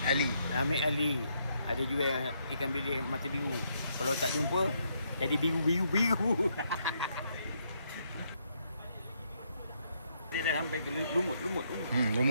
Ali. Amir Ali. Ada jual ikan bilis mata biru. Kalau tak jumpa, jadi biru. Dia dah sampai ke lumut.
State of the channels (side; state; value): both; inverted; correlation -0.75